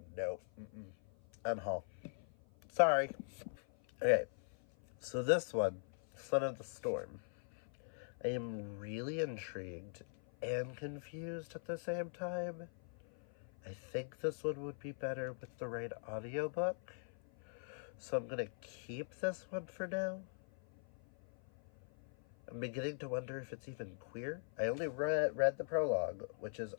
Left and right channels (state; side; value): silent; right; 50 dB below the other